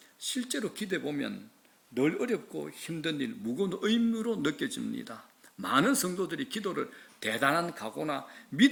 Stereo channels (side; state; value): both; identical; correlation 1.00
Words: 실제로 기도해 보면 늘 어렵고 힘든 일, 무거운 의무로 느껴집니다. 많은 성도들이 기도를 대단한 각오나